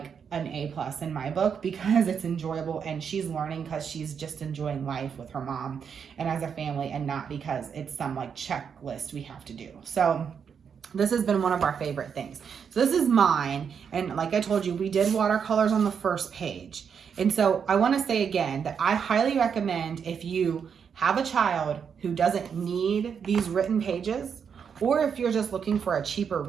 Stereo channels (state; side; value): quieter; left; 7.0 dB